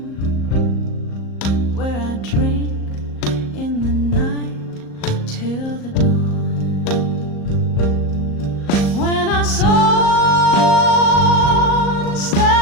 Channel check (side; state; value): right; late; 38 ms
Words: where I drink in the night till the dawn. When I saw